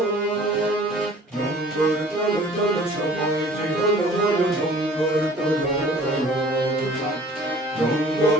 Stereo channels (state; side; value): normal; both; correlation 0.50